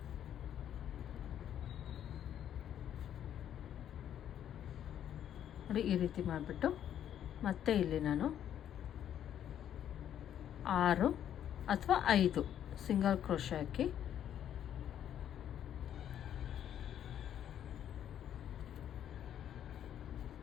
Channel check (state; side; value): quieter; right; 10.1 dB